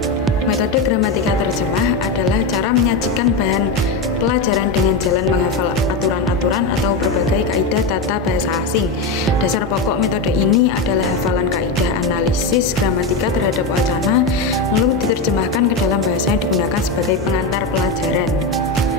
Metode gramatikal terjemah adalah cara menyajikan bahan pelajaran dengan jalan menghafal aturan-aturan atau berbagai kaidah tata bahasa asing. Dasar pokok metode ini adalah hafalan kaidah analisis gramatika terhadap wacana, lalu diterjemahkan ke dalam bahasa yang digunakan sebagai pengantar pelajaran.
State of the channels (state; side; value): quieter; right; 3.6 dB